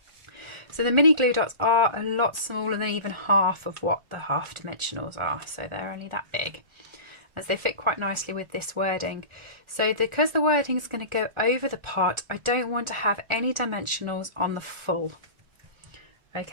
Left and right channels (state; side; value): late; left; 1.4 ms